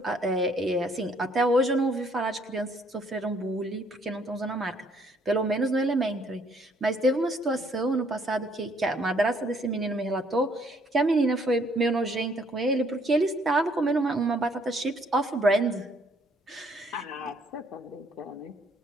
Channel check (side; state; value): both; normal; correlation 0.65